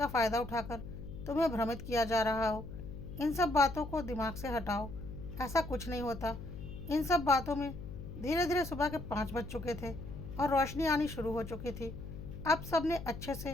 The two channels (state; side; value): noise; left; hum, 10 dB below the sound